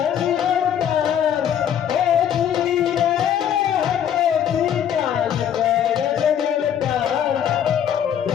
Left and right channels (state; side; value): quieter; right; 9.3 dB